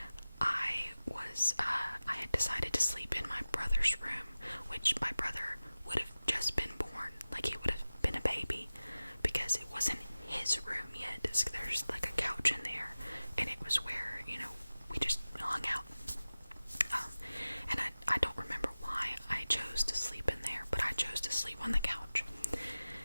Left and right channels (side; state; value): both; inverted; correlation -0.96